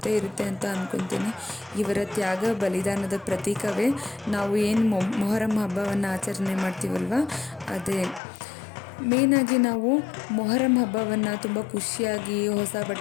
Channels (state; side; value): drops out; right; at 8.2 s